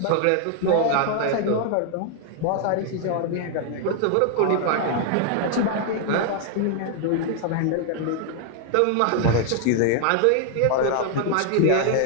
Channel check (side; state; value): both; different; correlation 0.00